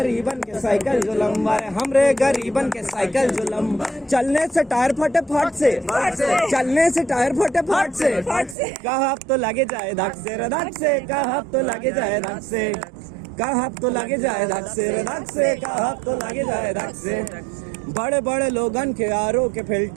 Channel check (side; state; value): left; drops out; at 8.6 s